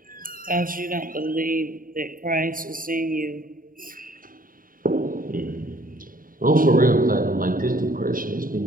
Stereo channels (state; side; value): late; left; 0.41 ms